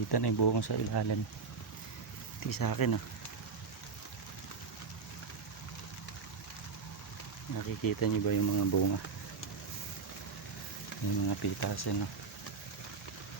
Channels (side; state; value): left; quieter; 5.2 dB